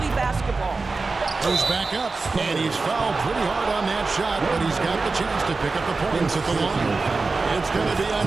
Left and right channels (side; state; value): left; quieter; 3.9 dB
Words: basketball. Goes back up, and he's fouled pretty hard on that shot, but he's got the chance to pick up the points at the line. It's going to be